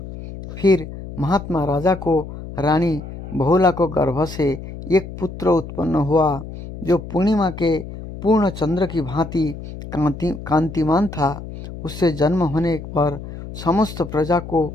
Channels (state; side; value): noise; left; hum, 11 dB below the sound